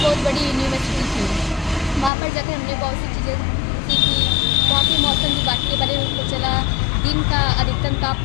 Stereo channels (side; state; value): right; drops out; at 2.1 s